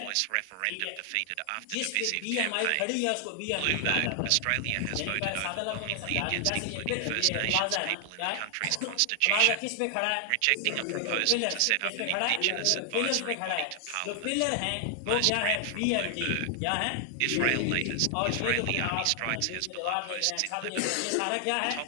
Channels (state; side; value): different; both; correlation 0.00